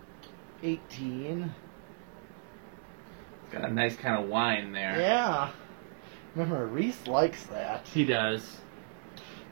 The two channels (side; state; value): left; silent; 55 dB below the other